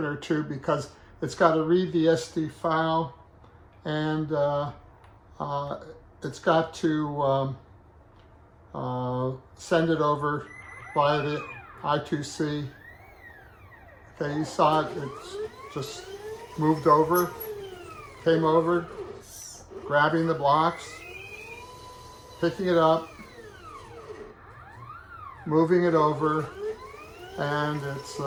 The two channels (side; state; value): both; identical; correlation 1.00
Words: or two because it's got to read the SD file, and it's got to send it over via the I2C. Okay, you saw it, it's just moved over, came over, grabbing the blocks, picking it up, moving it over, and it's